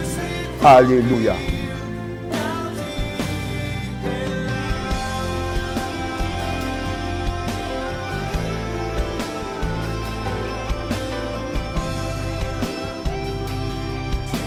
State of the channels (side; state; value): both; identical; correlation 1.00